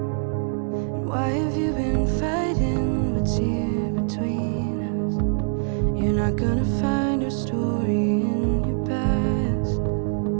And why have you been fighting what's here between us? You're not gonna find our story in your past.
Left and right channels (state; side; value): silent; left; digital silence